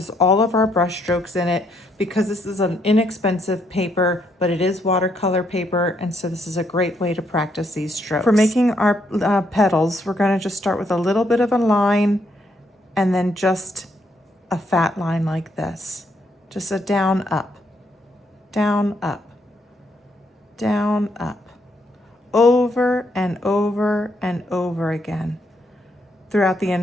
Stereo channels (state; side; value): normal; both; correlation 0.74